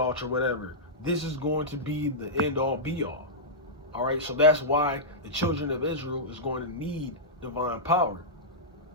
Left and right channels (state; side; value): normal; both; correlation -0.13